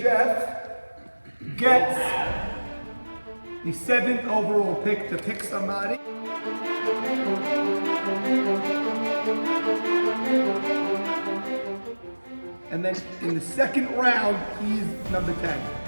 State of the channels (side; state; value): both; inverted; correlation -1.00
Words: Jeff gets the 7th overall pick to pick somebody. And then in the second round, he's number 10.